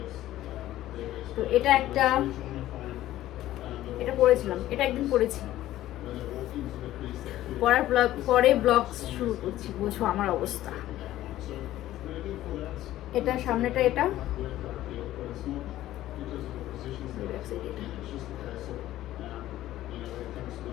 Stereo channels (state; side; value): quieter; right; 14.3 dB